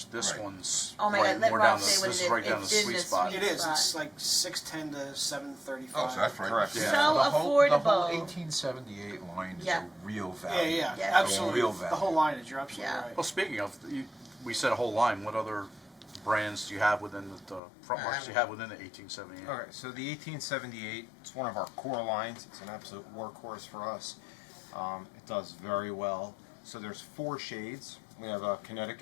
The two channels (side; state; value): right; drops out; at 17.6 s